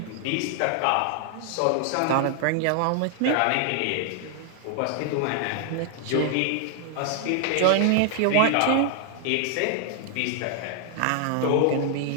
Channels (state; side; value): different; both; correlation 0.00